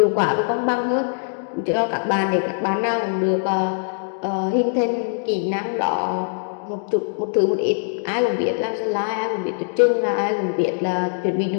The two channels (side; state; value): right; silent; digital silence